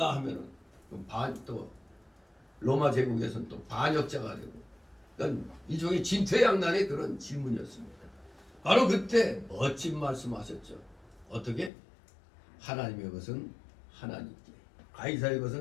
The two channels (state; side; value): drops out; right; at 11.7 s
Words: 하면은 또 로마 제국에서는 또 반역자가 되고, 그러니까 일종의 진퇴양난의 그런 질문이었습니다. 바로 그때 멋진 말씀하셨죠. 어떻게? 하나님의 것은 하나님께, 가이사의